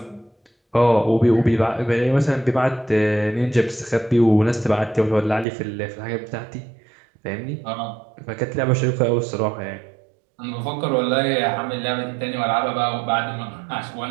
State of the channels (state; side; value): drops out; left; at 5.5 s